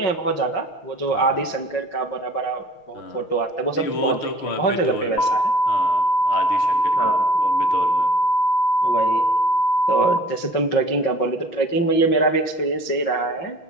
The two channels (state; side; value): late; right; 5.5 ms